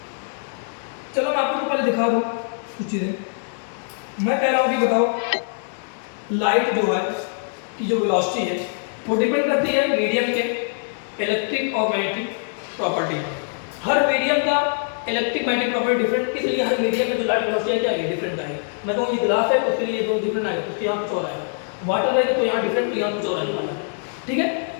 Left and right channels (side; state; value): right; silent; digital silence